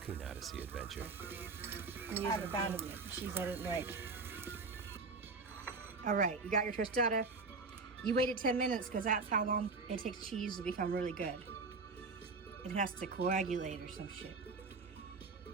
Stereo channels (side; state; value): left; quieter; 4.1 dB